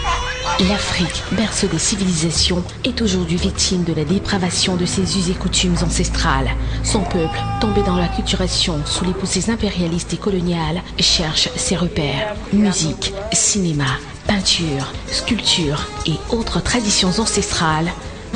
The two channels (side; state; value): both; identical; correlation 1.00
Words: L'Afrique, berceau des civilisations, est aujourd'hui victime de la dépravation de ses us et coutumes ancestrales. Son peuple, tombé dans l'acculturation sous les poussées impérialistes et coloniales, cherche ses repères. Musique, cinéma, peinture, sculpture et autres traditions ancestrales.